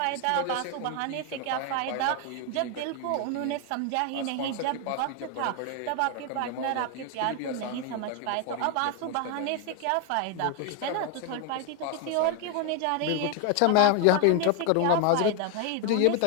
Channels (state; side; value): different; both; correlation 0.01